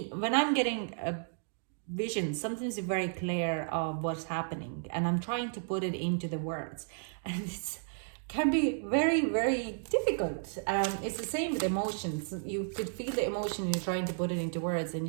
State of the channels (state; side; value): silent; left; digital silence